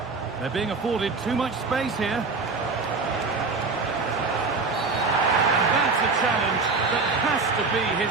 They're being afforded too much space here. And that's a challenge that has to be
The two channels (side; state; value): left; quieter; 4.2 dB